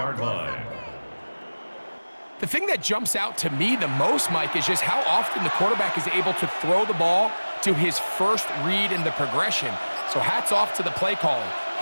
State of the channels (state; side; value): inverted; both; correlation -1.00